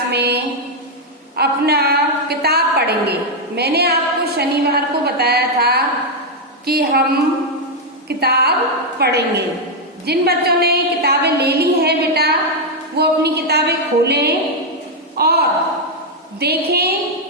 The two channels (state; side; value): normal; both; correlation 0.00